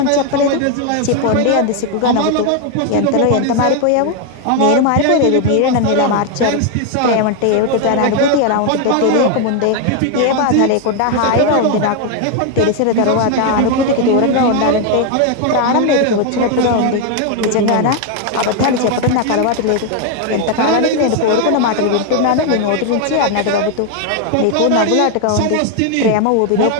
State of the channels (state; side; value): different; both; correlation 0.01